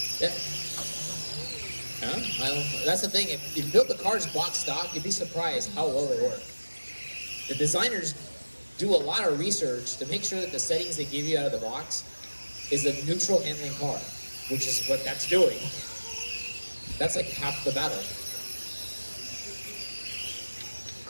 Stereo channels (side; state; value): both; inverted; correlation -1.00